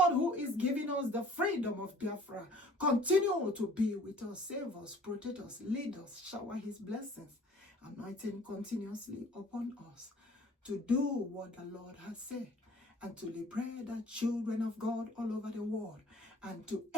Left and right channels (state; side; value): normal; both; correlation 0.51